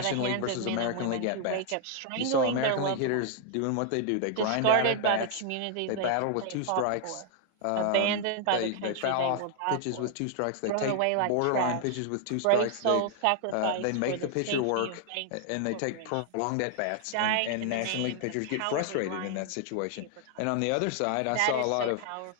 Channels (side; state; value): both; different; correlation 0.00